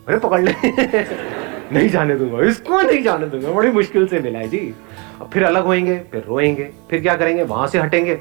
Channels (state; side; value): quieter; left; 30.9 dB